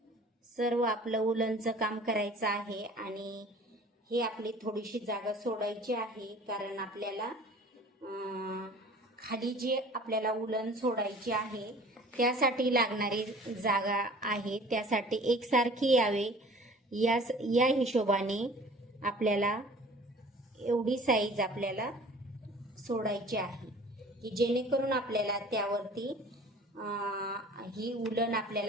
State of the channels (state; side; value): normal; both; correlation 0.47